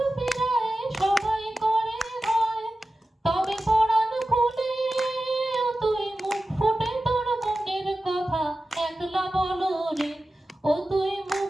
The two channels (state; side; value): normal; both; correlation 0.94